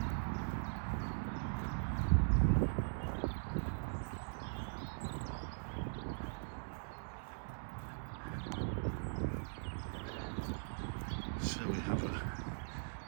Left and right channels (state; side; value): silent; left; digital silence